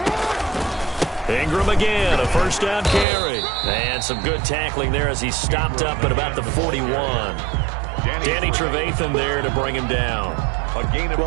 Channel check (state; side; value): drops out; left; at 3.1 s